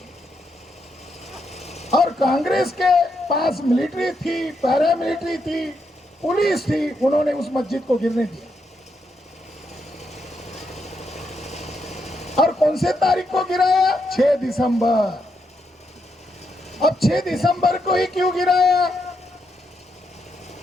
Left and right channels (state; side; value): normal; both; correlation 0.80